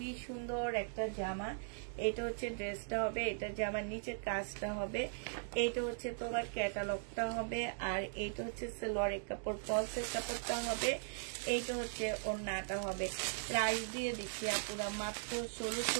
সুন্দর একটা জামা। এটা হচ্ছে ড্রেসটা হবে, এটা জামার নিচের কাজটা হবে। এইটা হচ্ছে তোমার ক্যাটালগটা হবে, আর এইটা হচ্ছে সালোয়ারের কাপড়, ফলসের কাপড়টা হবে। এইটা হচ্ছে ওন্নাটা হবে। প্রাইস দিয়ে দিচ্ছি আপুরা মাত্র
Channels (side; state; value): left; silent; digital silence